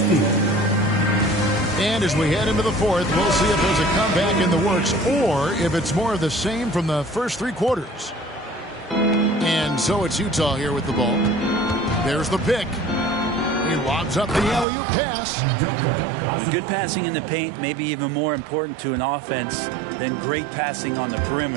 And as we head into the fourth, we'll see if there's a comeback in the works or if it's more of the same from the first 3 quarters. And so it's Utah here with the ball. There's the pick. He lobs up the alley-oop pass. Good passing in the paint, maybe even more important to an offense than great passing on the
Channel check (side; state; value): left; drops out; at 14.7 s